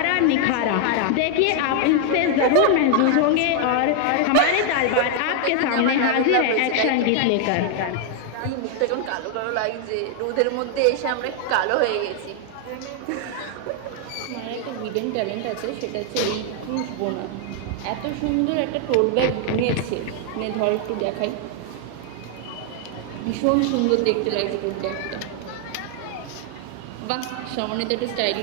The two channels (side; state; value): both; different; correlation 0.00